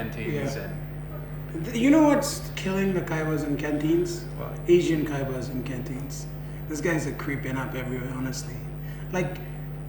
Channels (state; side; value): identical; both; correlation 1.00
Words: Yeah. And You know what's killing the kaibas and canteens? What? Asian kaibas and canteens. These guys are creeping up everywhere, honestly. Like,